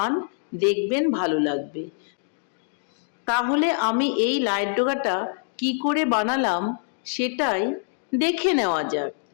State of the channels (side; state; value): right; silent; digital silence